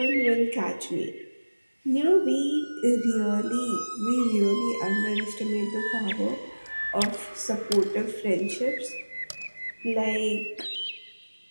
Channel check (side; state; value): both; inverted; correlation -1.00